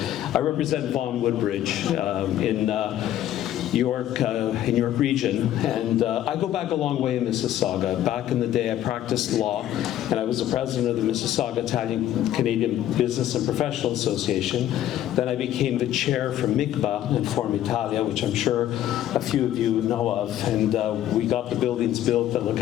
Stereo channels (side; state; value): right; quieter; 12.2 dB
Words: I represent Vaughan Woodbridge in York region, and I go back a long way in Mississauga. Back in the day, I practiced law, and I was the president of the Mississauga Italian-Canadian Business and Professional Association. Then I became the chair for MICBA and Form Italia, which I'm sure a few of you know of, and we got the buildings built that look